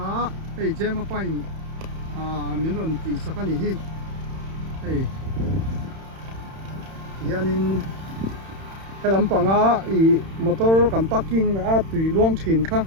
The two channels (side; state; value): left; late; 31 ms